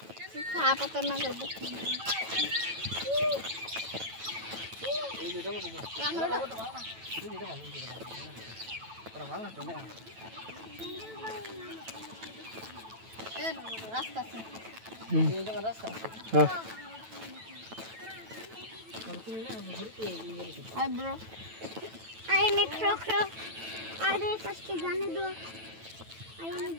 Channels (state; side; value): late; left; 9.1 ms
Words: छापा तर नागल बसना এই যেটা মতো আমরা এই যেটা ভালো पर ভালো না তো না এ রাস্তা আছে এই জায়গা রাস্তা আছে হ্যাঁ তুমি না ঘুরতে হাই ব্রো आई ने खरो खरो अरे फर्स्ट जाने दो आई ने